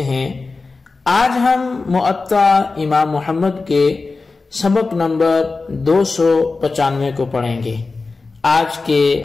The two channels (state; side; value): quieter; right; 3.9 dB